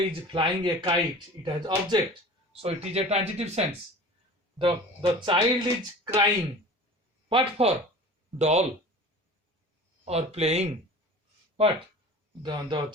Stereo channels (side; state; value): both; normal; correlation 0.40